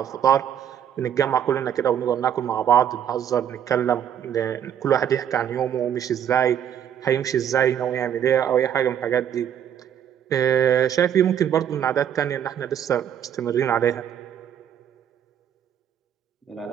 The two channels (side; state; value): left; quieter; 9.4 dB